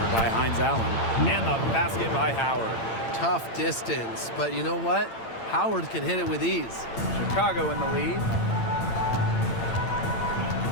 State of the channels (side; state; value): right; late; 8.8 ms